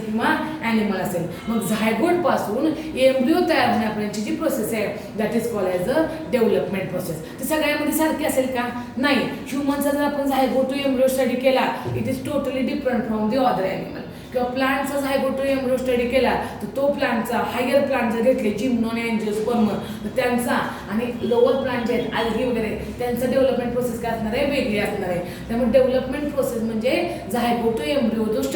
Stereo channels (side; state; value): both; identical; correlation 1.00